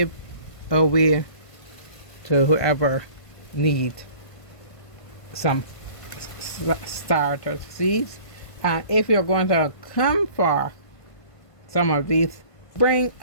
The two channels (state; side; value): late; right; 1.5 ms